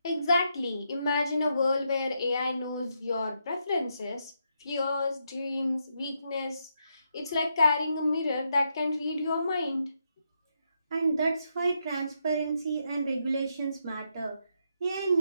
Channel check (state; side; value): inverted; both; correlation -0.80